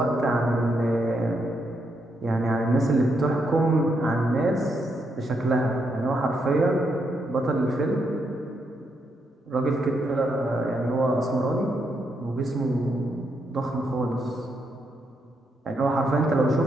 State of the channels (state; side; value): normal; both; correlation 0.79